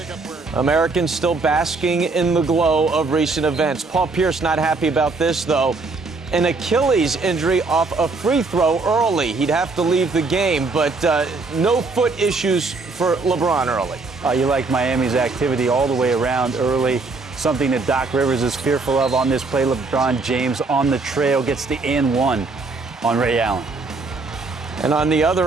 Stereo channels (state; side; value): quieter; left; 3.8 dB